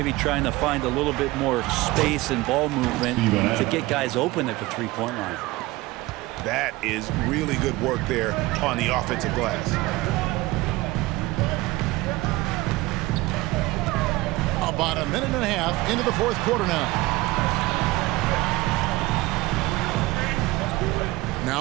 trying to find a little bit more space and ball movement to get guys open at the 3-point line. That is really good work there on the offensive glass. About a minute and a half into the 4th quarter now.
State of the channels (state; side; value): quieter; left; 19.9 dB